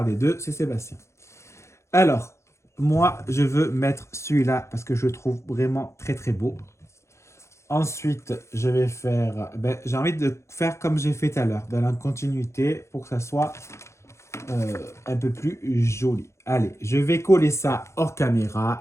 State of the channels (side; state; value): right; late; 0.14 ms